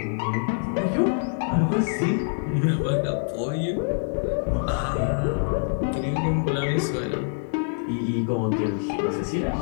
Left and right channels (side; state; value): right; silent; digital silence